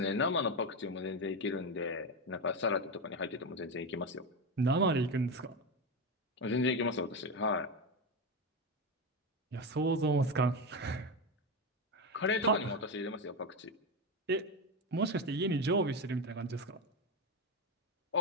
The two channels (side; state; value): both; normal; correlation 0.14